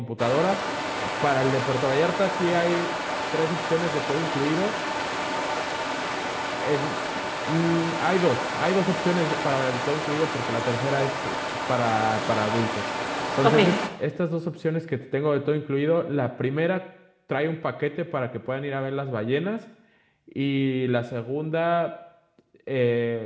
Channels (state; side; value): identical; both; correlation 1.00